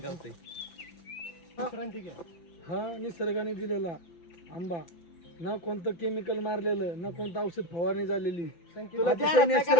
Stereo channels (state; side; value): late; right; 5.9 ms